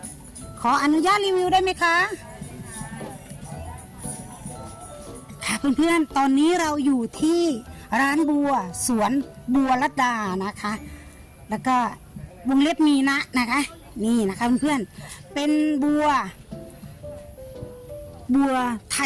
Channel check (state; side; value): identical; both; correlation 1.00